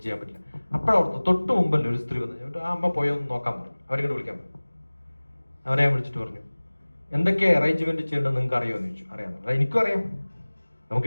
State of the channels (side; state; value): both; inverted; correlation -1.00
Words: ചെയ്യാൻ പറ്റില്ല. അപ്പോഴവിടുന്ന് തൊട്ട് മുമ്പല്ലേ ഒരു സ്ത്രീ വന്നു, ആ അമ്മ പോയൊന്ന് നോക്കാൻ പറഞ്ഞു. അവരിങ്ങോട്ട് വിളിക്കാൻ പറഞ്ഞു. അവരെ ഞാൻ വിളിച്ചിട്ട് പറഞ്ഞു, എന്തൊക്കെ അറേഞ്ച്മെന്റ് ചെയ്യേണ്ടത് നിങ്ങൾക്ക് അറിയുമെന്ന് ചോദിച്ചു. അറിയാമെന്ന്. എനിക്കും അറിയാം.